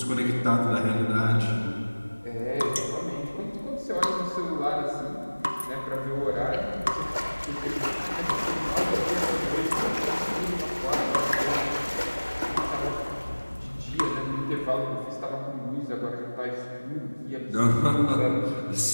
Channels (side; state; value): both; inverted; correlation -1.00